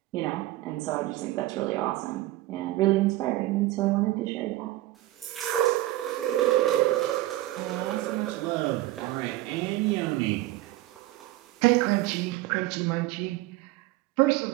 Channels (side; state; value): left; quieter; 16.5 dB